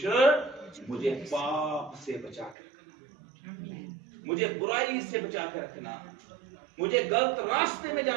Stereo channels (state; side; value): drops out; left; at 2.6 s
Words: मुझे पाप से बचा कर रखना, मुझे बुराई से बचा कर रखना, मुझे गलत रास्ते में